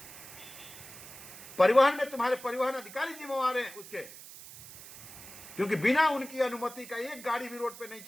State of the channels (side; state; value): right; noise; hiss, 15 dB below the sound